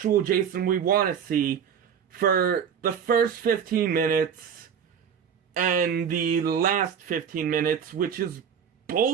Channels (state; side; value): quieter; left; 7.7 dB